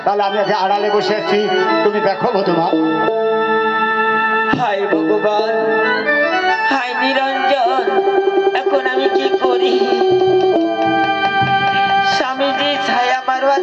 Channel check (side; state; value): both; identical; correlation 1.00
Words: তাহলে আমি আগে আড়ালে বসে আছি, তুমি দেখো বধুমা। হায় ভগবান, হায় নিরঞ্জন, এখন আমি কি করি? স্বামীজি ছায়া মারবার